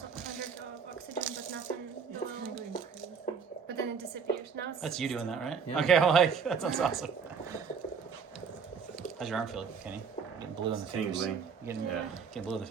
100 of oxygen, but nothing below. But then it disappears. Now it's. That's you doing that, right? Yeah. Okay, I'm like, that sounds awesome. How's your arm feel, Kenny? Getting blue in the fingers. Tingling. Getting, Yeah. getting blue in the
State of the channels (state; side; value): quieter; left; 6.1 dB